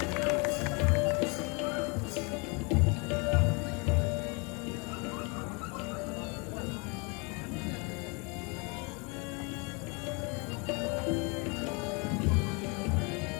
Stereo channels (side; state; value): right; quieter; 31.2 dB